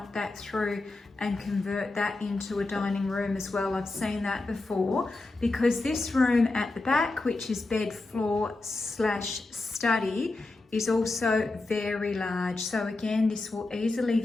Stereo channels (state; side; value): quieter; right; 3.2 dB